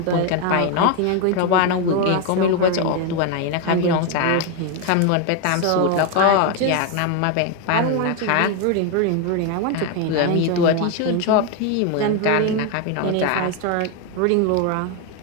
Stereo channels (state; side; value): different; both; correlation 0.01